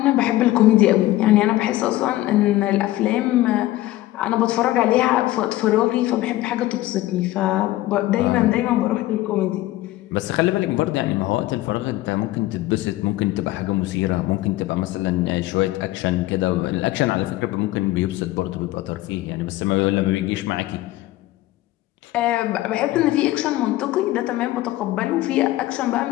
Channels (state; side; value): quieter; right; 16.3 dB